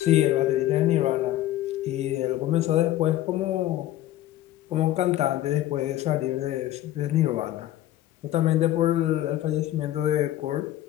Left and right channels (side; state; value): right; quieter; 14.0 dB